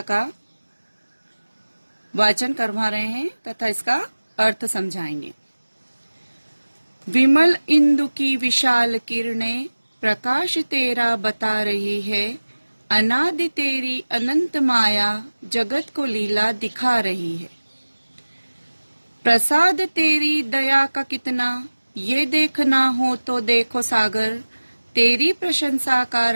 वाचन करवा रहे हैं तथा इसका अर्थ समझाएंगे। विमल इंदु की विशाल किरणें प्रकाश तेरा बता रही है, अनादि तेरी अनंत माया जगत को लीला दिखा रही है। प्रसाद तेरी दया का कितना, ये देखना हो तो देखो सागर, तेरी प्रशंसा का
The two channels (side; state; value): both; inverted; correlation -1.00